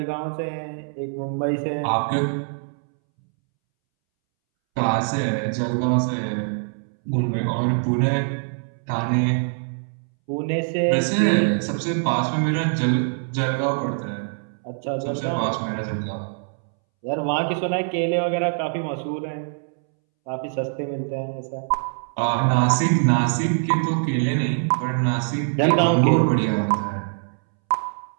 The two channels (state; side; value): silent; left; 63 dB below the other